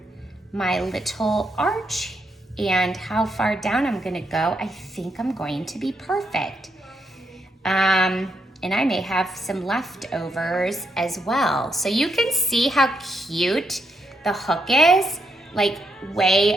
my little arch and how far down I'm gonna go, I think I'm going to be perfect. And I may have some leftovers as well. So you can see how cute the hook is, like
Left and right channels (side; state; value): both; normal; correlation 0.79